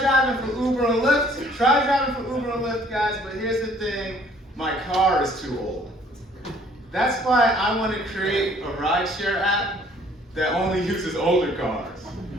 for Uber and Lyft. Guys, but here's the thing, my car is too old. That's why I want to create a rideshare app that only uses older cars.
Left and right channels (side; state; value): both; normal; correlation 0.58